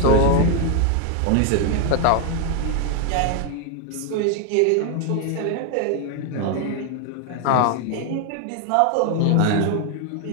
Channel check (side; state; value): both; different; correlation 0.00